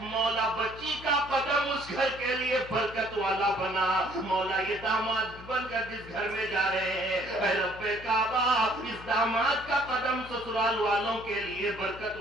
بچی کا قدم اس گھر کے لیے برکت والا بنا۔ مولا یہ داماد بن کر جس گھر میں جا رہے ہیں اے رب کعبہ اس داماد کا قدم سسرال والوں کے لیے برکت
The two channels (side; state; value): left; noise; hum, 17 dB below the sound